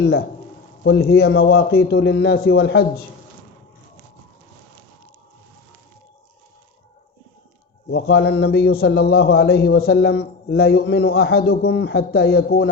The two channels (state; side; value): quieter; right; 4.4 dB